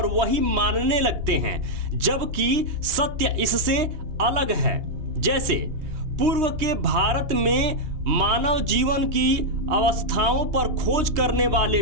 वही मानने लगते हैं, जबकि सत्य इससे अलग है। जैसे पूर्व के भारत में मानव जीवन की अवस्थाओं पर खोज करने वाले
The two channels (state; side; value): late; left; 2.9 ms